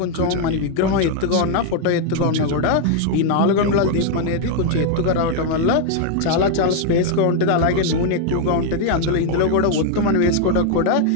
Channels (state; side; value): different; both; correlation 0.00